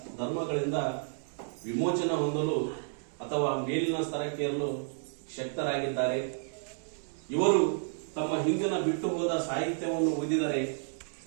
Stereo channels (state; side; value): silent; left; 57 dB below the other